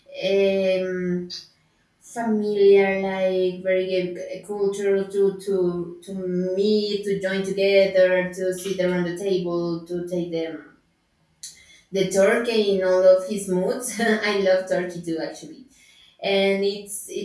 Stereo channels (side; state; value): both; identical; correlation 1.00